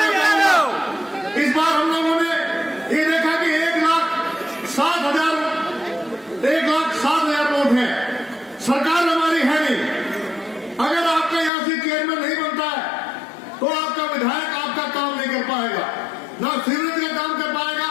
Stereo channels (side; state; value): right; drops out; at 11.5 s